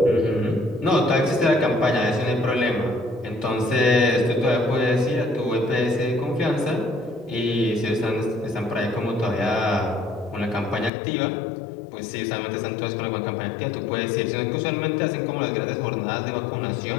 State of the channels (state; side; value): drops out; right; at 10.9 s